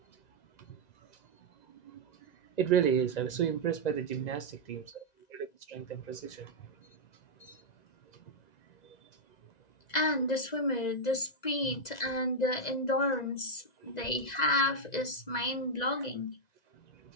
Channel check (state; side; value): late; right; 1.9 ms